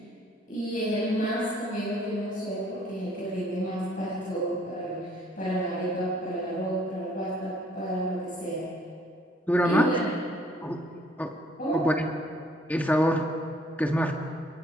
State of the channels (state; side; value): normal; both; correlation 0.61